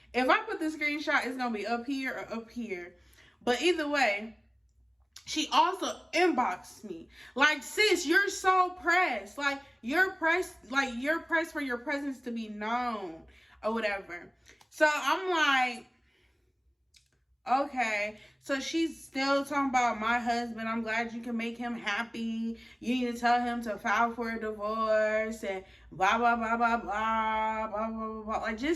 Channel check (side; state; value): both; identical; correlation 1.00